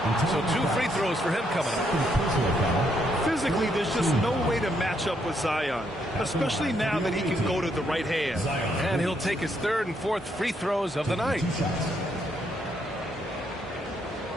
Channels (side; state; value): both; normal; correlation 0.74